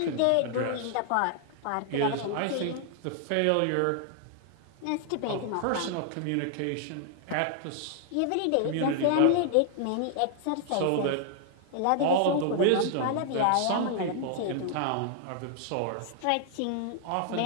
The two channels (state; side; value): different; both; correlation 0.00